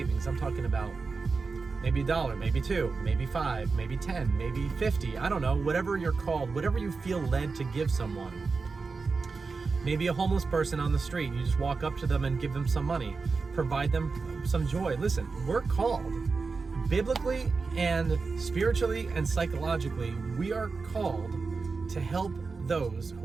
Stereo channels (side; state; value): left; quieter; 4.4 dB